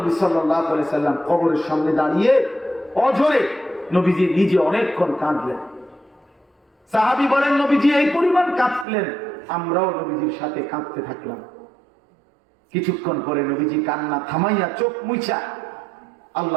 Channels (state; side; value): drops out; left; at 8.8 s